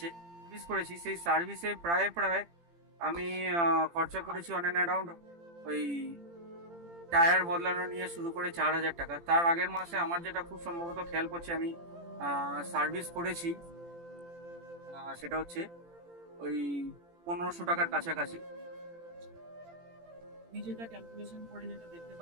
সার্ভিস করেছি, সেই সার্ভিসে প্রায় আমি খরচা করেছি অন অ্যান অ্যারাউন্ড ওই টায়ার বদলানো নিয়ে শুরু করে 4,000 টাকা। তার আগের মাসে আমার যেটা খুব সম্ভবত খেয়াল করছে আমি সার্ভিস করেছি, সেটা হচ্ছে ওই 1,500 টাকার কাছাকাছি। আমি যেটা ক্যালকুলেশন করে যেটা দেখতে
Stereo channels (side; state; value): left; late; 18 ms